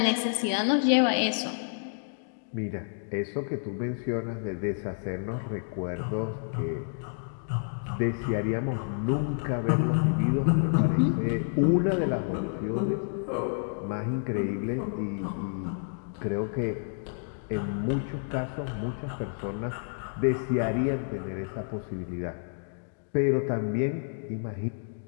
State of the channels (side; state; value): right; silent; digital silence